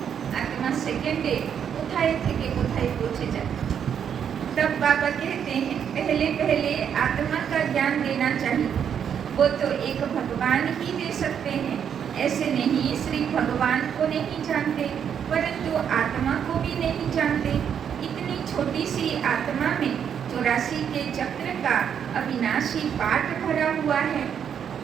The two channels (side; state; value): left; quieter; 8.2 dB